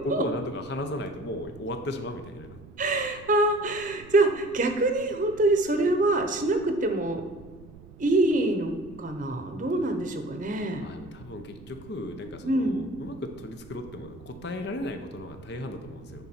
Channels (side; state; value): right; noise; rumble, 20 dB below the sound